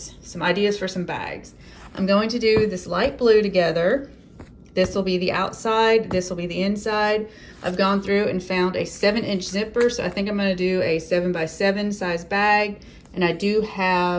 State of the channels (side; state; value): both; identical; correlation 1.00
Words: some ideas for some bags. I'm going to do this light blue together. This will be the outside, this will be the inside. I've gone through and found a 7-inch zipper, so I think I'm going to do a 7x7 size bag. And I do